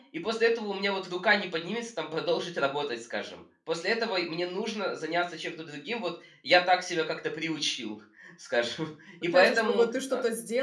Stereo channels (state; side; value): identical; both; correlation 1.00